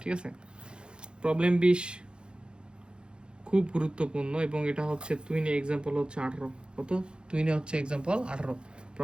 ঠিক আছে। প্রবলেম 20 খুব গুরুত্বপূর্ণ, এবং এটা হচ্ছে তুহিনে এক্সাম্পল হচ্ছে 18, কত, তুহিনে হচ্ছে এক্সাম্পল 18,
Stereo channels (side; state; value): left; late; 0.051 ms